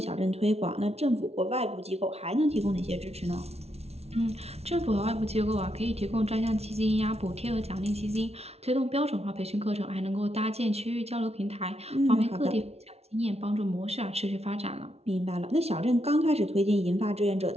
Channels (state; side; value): late; left; 0.31 ms